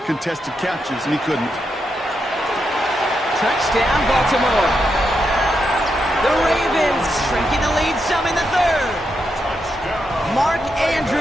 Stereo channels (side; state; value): both; normal; correlation 0.84